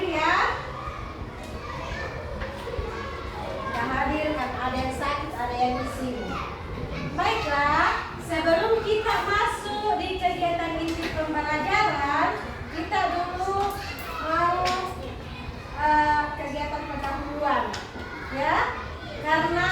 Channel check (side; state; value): both; identical; correlation 1.00